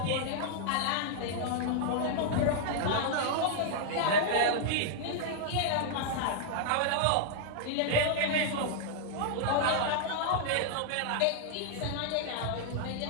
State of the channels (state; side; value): different; both; correlation -0.01